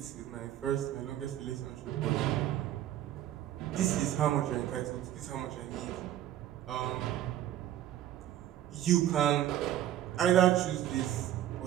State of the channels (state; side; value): quieter; left; 12.2 dB